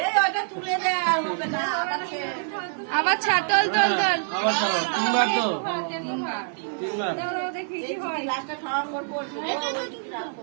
আবার ছাড় তল তল তল তিনবার তো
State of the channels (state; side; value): silent; left; digital silence